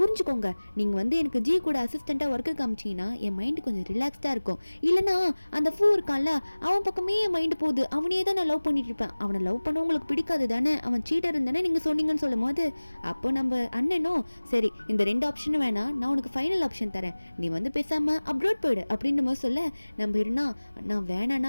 நீங்கள் வந்து எனக்கு ஜி கூட அசிஸ்டண்ட்டாக ஒர்க்கு காமிச்சிங்கன்னா என் மைண்டு கொஞ்சம் ரிலாக்ஸ்டாக இருக்கும், இல்லைனா அந்த ஃபூ இருக்கான்ல அவன் பக்கமே என் மைண்டு போகுது அவனையே தான் நான் லவ் பண்ணிட்டு இருப்பேன், அவனை லவ் பண்ண உங்களுக்கு பிடிக்காது தானே அவன் சீட்டர் இருந்தானே நீங்கள் சொன்னீங்கன்னு சொல்லும் போது அப்போ நம்ம அண்ணனும் சரி இந்த ரெண்டு ஆப்ஷனும் வேணாம் நான் உனக்கு ஃபைனல் ஆப்ஷன் தரேன் நீ வந்து பேசாமல் அப்ரோட் போயிடு அப்படின்ற மாதிரி சொல்ல நம்ம இருந்தா நான்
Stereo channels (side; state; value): both; inverted; correlation -1.00